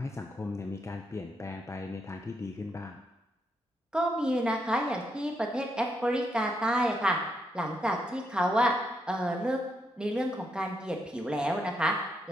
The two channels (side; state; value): both; normal; correlation 0.79